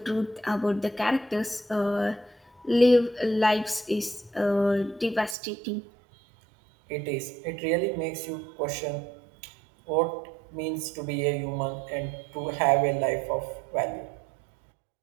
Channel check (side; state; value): left; drops out; at 5.4 s